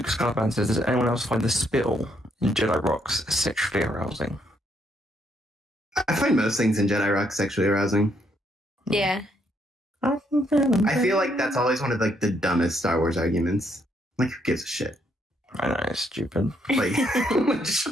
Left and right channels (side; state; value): both; normal; correlation 0.73